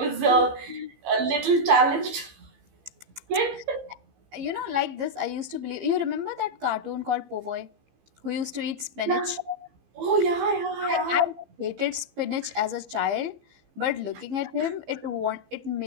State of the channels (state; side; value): late; left; 15 ms